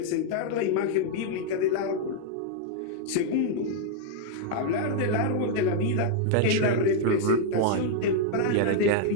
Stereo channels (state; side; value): different; both; correlation -0.01